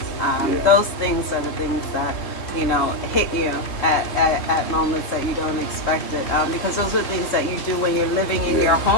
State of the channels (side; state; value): right; late; 3.0 ms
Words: those things are the things that, you know, hit you at moments that you don't expect it, because those are the things that you do when you're living in your